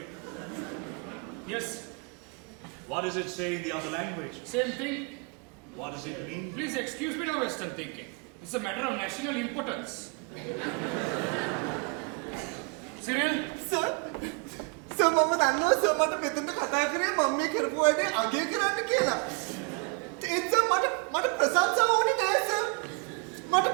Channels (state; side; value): quieter; left; 34.5 dB